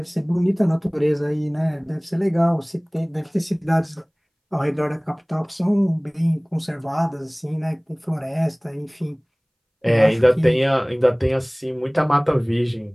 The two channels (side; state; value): both; identical; correlation 1.00